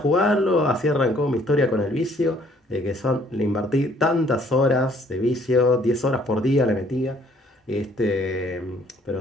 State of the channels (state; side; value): normal; both; correlation 0.61